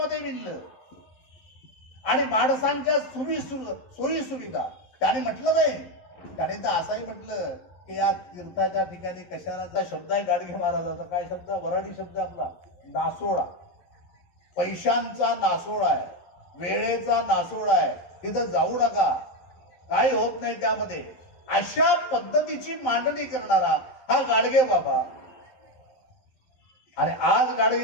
विणलं. आणि माणसांच्या सोयी सुविधा त्याने म्हटलं नाही, त्याने तर असंही म्हटलं की या तीर्थाच्या ठिकाणी कशाला शब्द आहे गाडगे महाराजाचा, काय शब्द, वराडी शब्द आपला, नासोडा. पैशांचा नासोडा आहे, वेळेचा नासोडा आहे, तिथं जाऊ नका, काही होत नाही त्यामध्ये. अशा पद्धतीची मांडणी करणारा हा गाडगे बाबा. आणि आज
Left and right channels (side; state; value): right; late; 11 ms